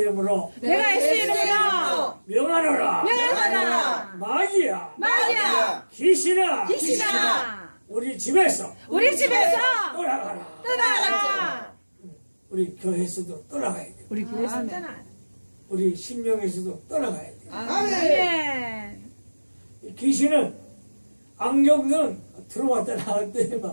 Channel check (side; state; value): both; inverted; correlation -1.00